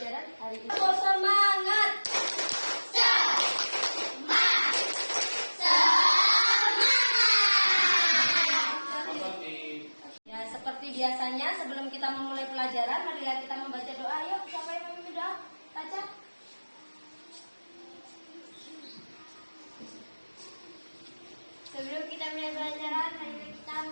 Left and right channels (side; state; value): both; inverted; correlation -1.00